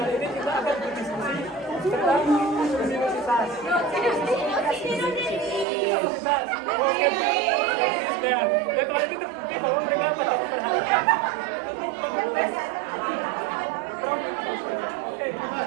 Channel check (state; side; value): drops out; left; at 5.7 s